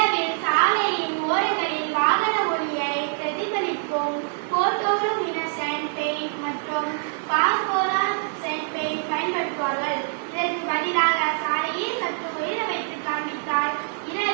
சாலையின் ஓரங்களில் வாகன ஒளியை பிரதிபலிக்கும் போட்டோலுமினசன்ட் பெயிண்ட் மற்றும் பாஸ்போரசன்ட் பெயிண்ட் பயன்படுத்துவார்கள். இதற்கு பதிலாக சாலையை சற்று உயர வைத்து காண்பித்தால்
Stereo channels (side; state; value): left; silent; digital silence